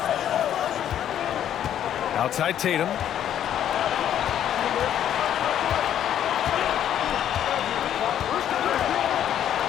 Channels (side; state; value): right; quieter; 10.4 dB